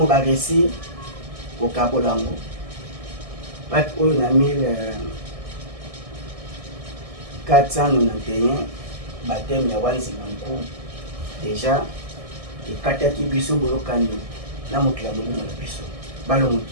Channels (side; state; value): left; late; 1.6 ms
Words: ba récit au Kabolango bat oyo na 1491 baptême ya wanzi nanko déjà ekataki biso bolokani na mokili ya molimo na biso